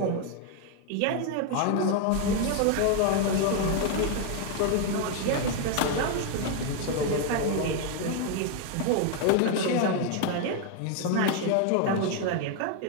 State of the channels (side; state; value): both; different; correlation 0.01